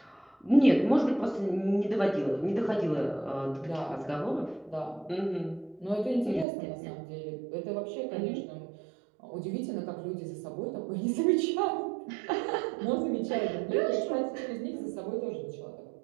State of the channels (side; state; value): left; drops out; at 6.5 s